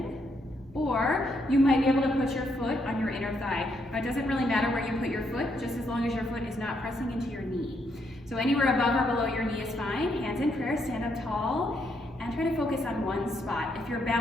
or you might be able to put your foot on your inner thigh. It doesn't really matter where you put your foot, just as long as your foot is not pressing into your knee. So anywhere above or below your knee is fine. Hands in prayer, stand up tall, and try to focus on one spot. If your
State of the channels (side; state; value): both; normal; correlation 0.75